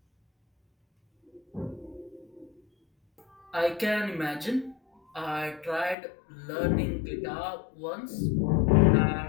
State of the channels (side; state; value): right; drops out; at 6.0 s